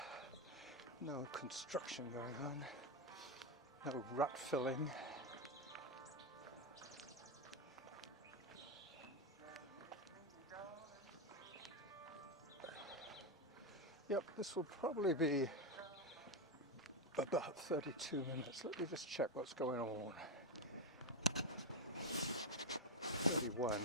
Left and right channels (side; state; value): both; normal; correlation 0.06